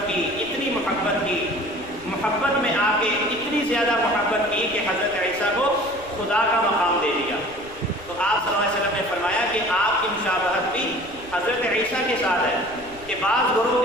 کی، محبت میں آ کے اتنی زیادہ محبت کی کہ حضرت عیسیٰ کو خدا کا مقام دے دیا۔ تو آپ صلی اللہ علیہ وسلم نے فرمایا کہ آپ کی مشابہت بھی حضرت عیسیٰ کے ساتھ ہے، کہ بعض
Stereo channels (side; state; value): left; noise; rumble, 21 dB below the sound